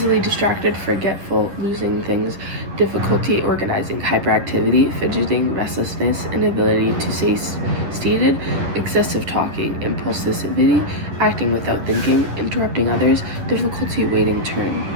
distracted, forgetful, losing things, difficulty organizing. Hyperactivity, fidgeting, restlessness, inability to stay seated, excessive talking. Impulsivity, acting without thinking, interrupting others, difficulty waiting turn.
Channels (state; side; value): late; left; 11 ms